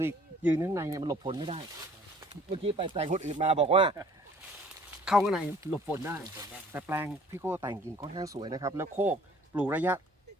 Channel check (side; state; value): both; normal; correlation 0.54